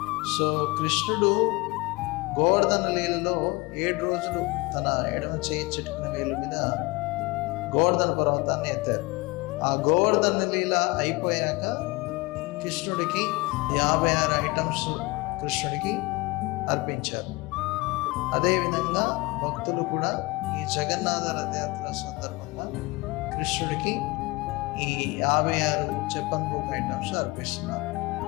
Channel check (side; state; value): right; quieter; 23.4 dB